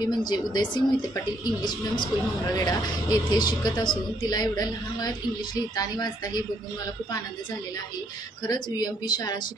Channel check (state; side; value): normal; both; correlation 0.70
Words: म्हणजे Udaysingh Mohite Patil English medium school Mangalvedha येथे शिकत असून तिला एवढ्या लहान वयात इंग्लिश लिहिता आणि वाचता हे बघून मला खूप आनंद झालेला आहे. खरंच UMP शाळा